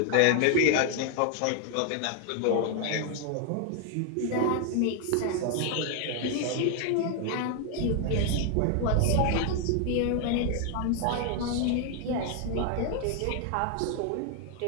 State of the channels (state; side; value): different; both; correlation 0.00